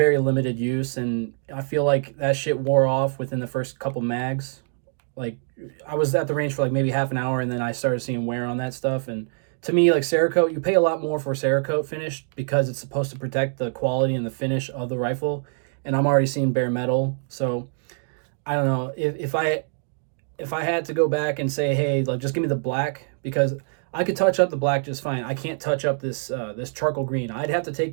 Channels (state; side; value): silent; left; digital silence